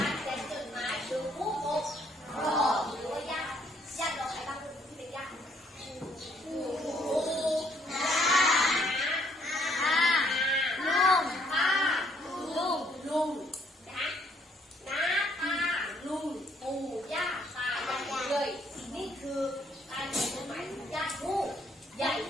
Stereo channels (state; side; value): normal; both; correlation 0.67